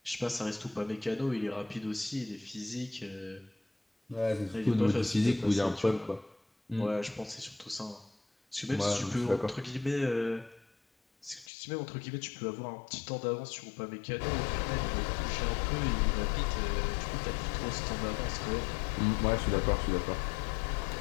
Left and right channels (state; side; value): drops out; right; at 11.5 s